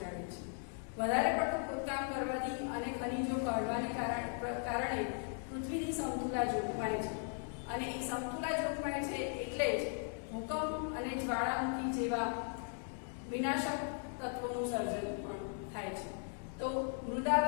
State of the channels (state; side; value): silent; right; 52 dB below the other